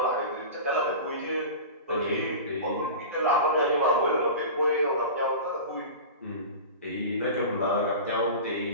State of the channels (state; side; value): inverted; both; correlation -0.31